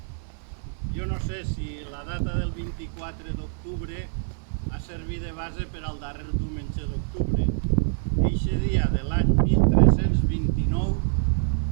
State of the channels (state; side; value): silent; left; digital silence